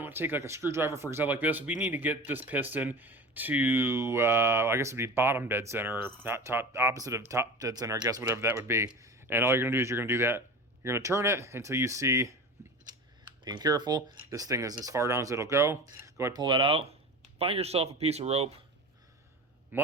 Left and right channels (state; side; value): normal; both; correlation 0.32